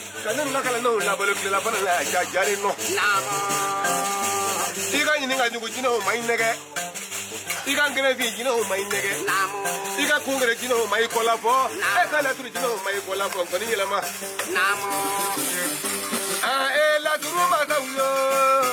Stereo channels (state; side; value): identical; both; correlation 1.00